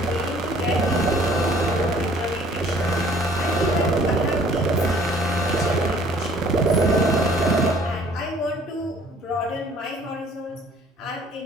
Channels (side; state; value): both; normal; correlation 0.56